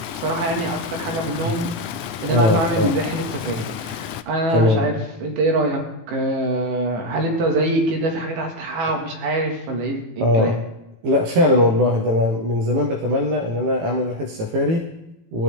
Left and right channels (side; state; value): left; late; 18 ms